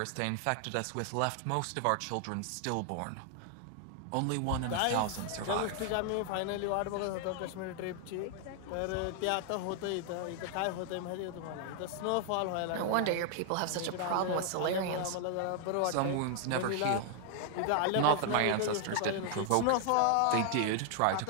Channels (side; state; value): both; different; correlation 0.00